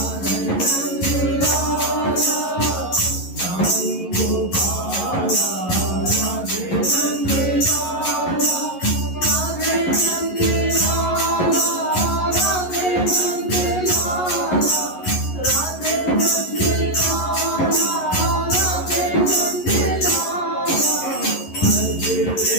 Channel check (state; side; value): late; right; 11 ms